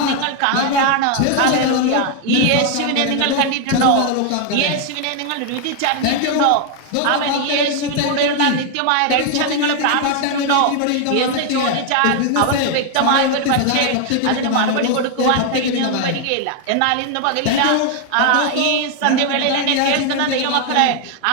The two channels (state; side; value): different; both; correlation 0.00